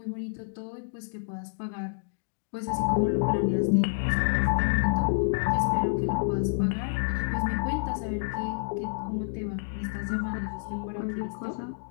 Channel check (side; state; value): right; silent; digital silence